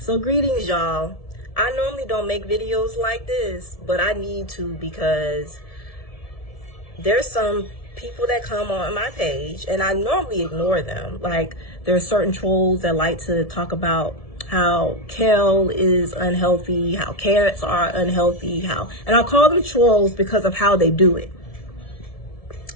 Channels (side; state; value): right; late; 1.7 ms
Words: So greetings, y'all. I normally don't make videos like this, but I need to because there's some people that come on my page and I normally ignore them. Like, there are certain trolls that like to talk about how kale is unhealthy, how carrots are unhealthy, and I call them trolls because of how they do it.